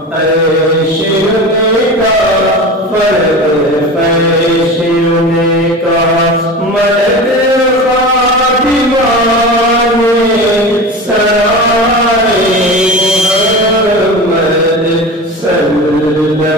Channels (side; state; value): both; normal; correlation 0.30